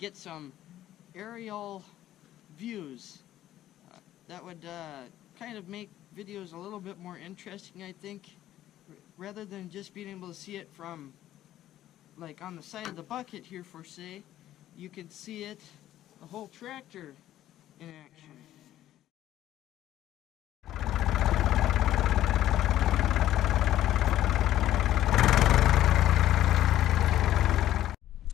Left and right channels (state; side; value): quieter; right; 13.0 dB